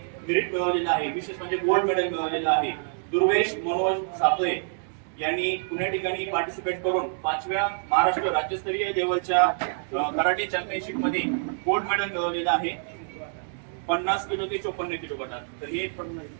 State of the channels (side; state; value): left; silent; digital silence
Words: मेरिट मिळवलेलं आहे. विशेष म्हणजे गोल्ड मेडल मिळवलेलं आहे. दुर्वेश मनोज सातोळे यांनी पुणे ठिकाणी पार्टिसिपेट करून 5व्या महाराष्ट्र राज्यस्तरीय लेवलच्या कराटे चॅम्पियनशिप मध्ये गोल्ड मेडल मिळवलेलं आहे 50 किलो ते 54 किलो गटात. तर हे